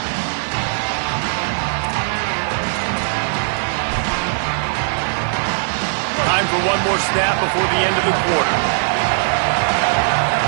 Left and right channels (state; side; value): silent; left; digital silence